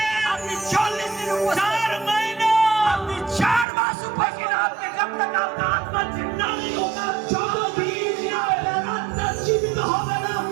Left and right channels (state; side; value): drops out; left; at 3.7 s